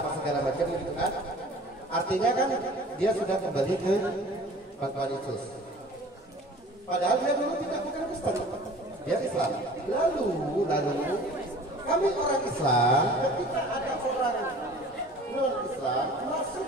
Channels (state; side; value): normal; both; correlation 0.45